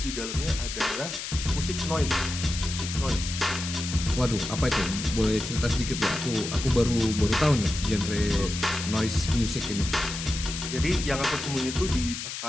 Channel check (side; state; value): left; noise; hiss, 6 dB below the sound